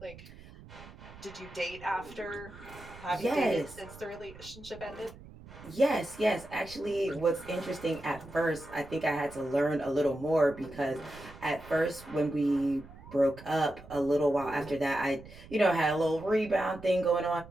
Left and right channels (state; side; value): noise; right; rumble, 18 dB below the sound